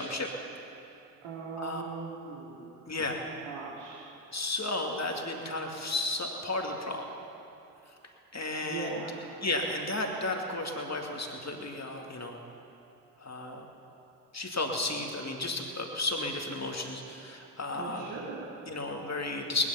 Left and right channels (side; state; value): both; normal; correlation -0.05